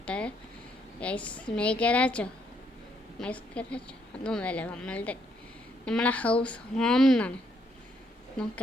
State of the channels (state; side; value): normal; both; correlation 0.72